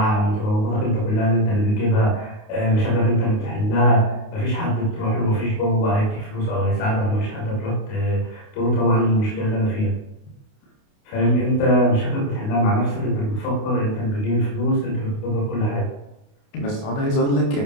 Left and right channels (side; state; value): right; late; 28 ms